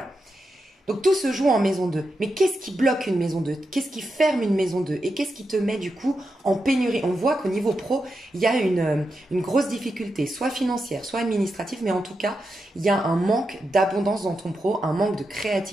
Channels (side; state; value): both; normal; correlation 0.87